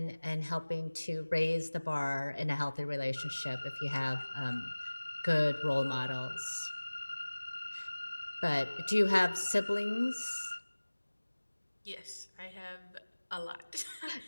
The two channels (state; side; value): inverted; both; correlation -1.00